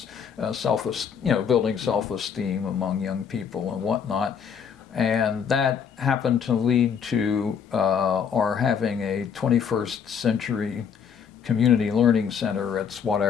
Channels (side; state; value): right; quieter; 7.1 dB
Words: building self-esteem among young people and whatnot. And that happened to lead to our having a 21st century community learning center at